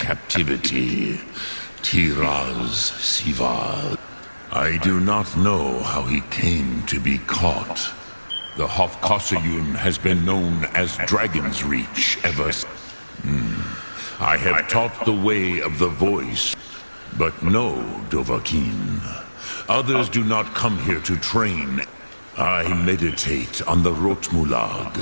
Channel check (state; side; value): inverted; both; correlation -1.00